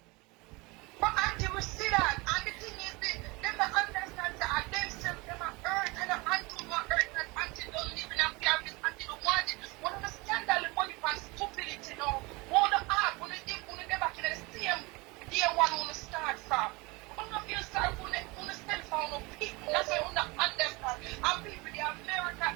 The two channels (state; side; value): quieter; left; 25.2 dB